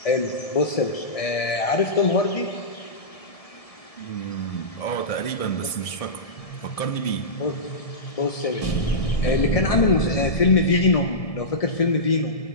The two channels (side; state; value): right; late; 1.7 ms